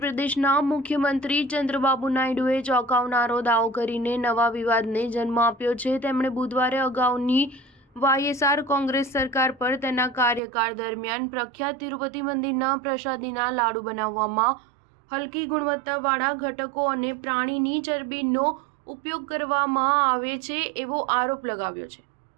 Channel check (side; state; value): left; drops out; at 10.4 s